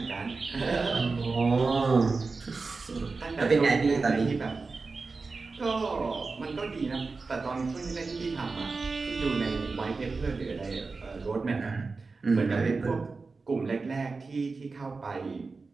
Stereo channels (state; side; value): quieter; left; 4.1 dB